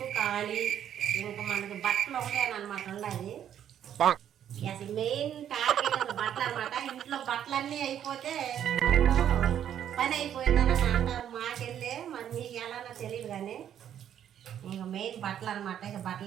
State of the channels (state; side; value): quieter; left; 10.0 dB